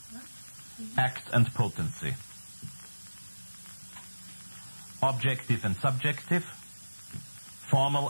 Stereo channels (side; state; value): both; inverted; correlation -1.00